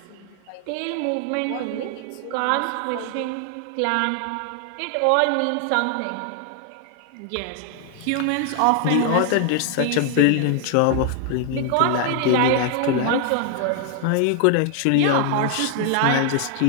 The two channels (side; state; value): both; different; correlation 0.00